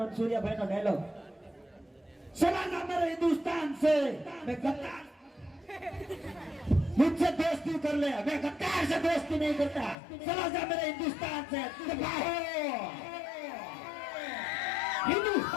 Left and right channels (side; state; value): right; drops out; at 10.0 s